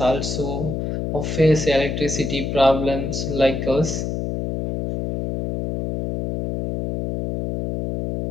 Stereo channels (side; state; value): left; noise; hum, 3 dB below the sound